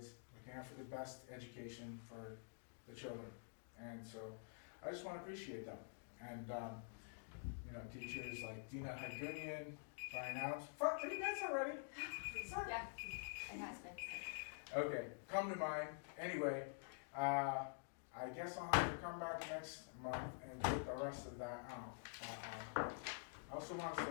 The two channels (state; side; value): silent; right; digital silence